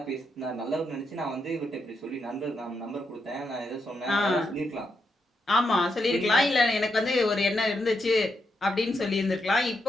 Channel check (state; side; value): normal; both; correlation 0.82